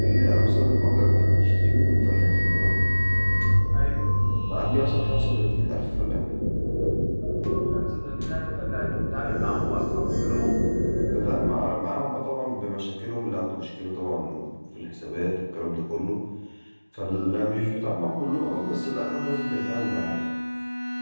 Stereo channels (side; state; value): both; inverted; correlation -1.00